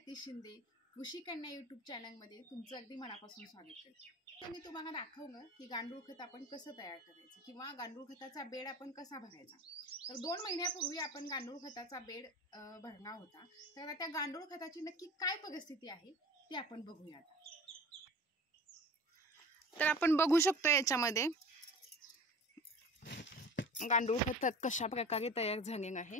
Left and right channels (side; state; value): both; normal; correlation 0.39